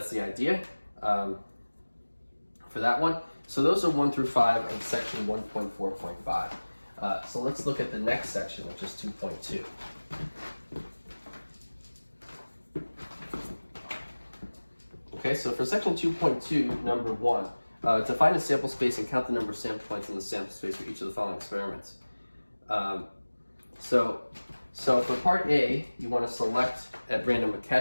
the idea for that one. So those are 1 through 5 of section 1.4.5. So let's look at the next section, which is 2.2. Okay, so for section 2.2, number 1, to find a sample space and count the number of sample points in the sample space for each of the following experiments. So for part A, you want to select at random a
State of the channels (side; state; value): both; inverted; correlation -1.00